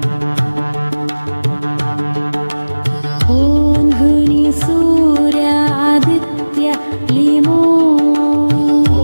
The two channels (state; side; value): inverted; both; correlation -1.00